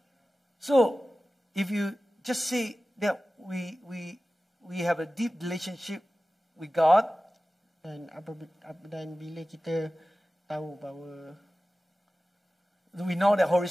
So if you just say that we have a deep relationship with God, Dan bila kita tahu bahawa we know that Holy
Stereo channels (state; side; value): normal; both; correlation 0.96